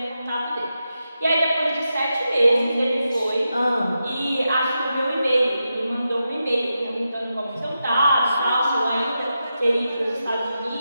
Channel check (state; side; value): inverted; both; correlation -0.88